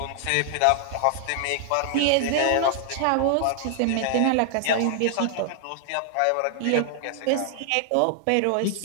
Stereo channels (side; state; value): both; different; correlation 0.00